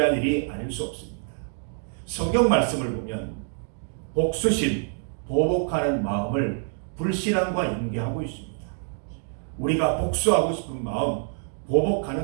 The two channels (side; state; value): left; silent; 61 dB below the other